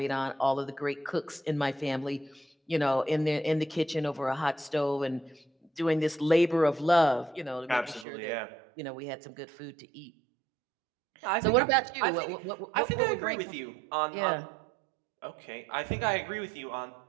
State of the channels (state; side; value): drops out; left; at 8.1 s